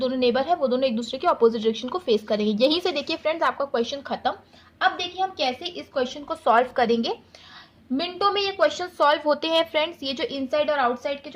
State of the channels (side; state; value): both; identical; correlation 1.00